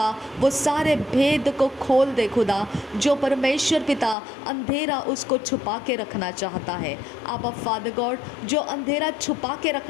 वो सारे भेद को खोल दे खुदा, जो परमेश्वर पिता अंधेरा उसको छुपा के रखना चाहता है। आप फादर फादर गॉड, जो अंधेरा छुपा के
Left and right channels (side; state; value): right; drops out; at 4.2 s